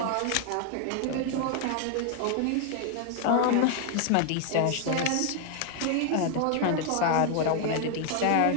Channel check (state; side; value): different; both; correlation 0.00